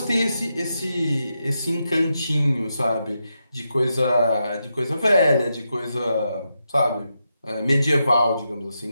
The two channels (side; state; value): both; inverted; correlation -0.86